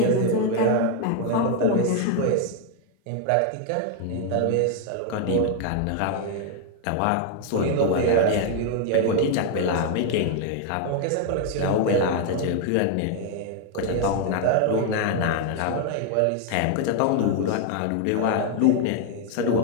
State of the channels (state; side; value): different; both; correlation 0.00